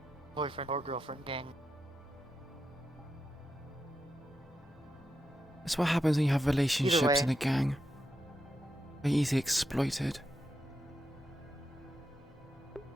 boyfriend or girlfriend gang. That's what happens when you have relationships way. in a gang. They're easily exploited.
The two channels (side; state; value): both; normal; correlation 0.86